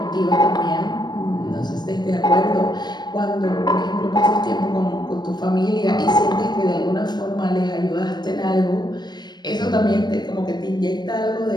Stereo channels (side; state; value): right; late; 0.21 ms